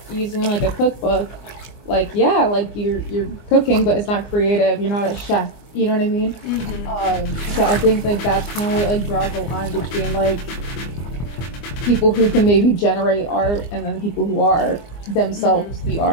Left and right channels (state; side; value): late; right; 24 ms